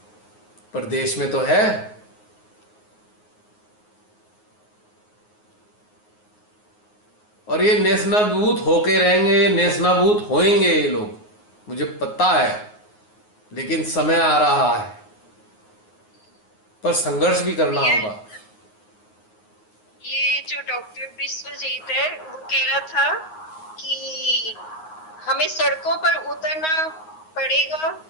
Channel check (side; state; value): right; late; 9.5 ms